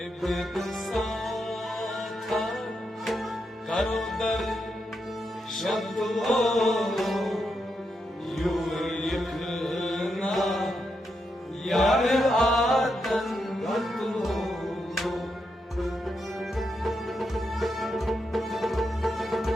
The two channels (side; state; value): both; normal; correlation 0.83